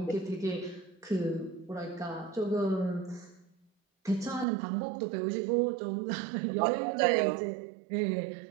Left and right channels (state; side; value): drops out; left; at 4.5 s